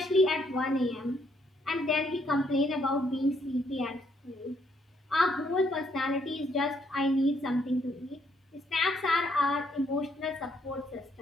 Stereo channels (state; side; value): normal; both; correlation 0.72